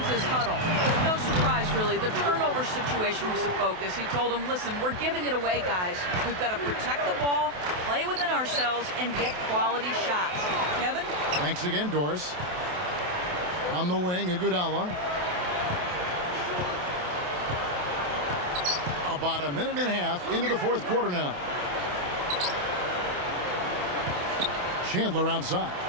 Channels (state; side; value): late; left; 28 ms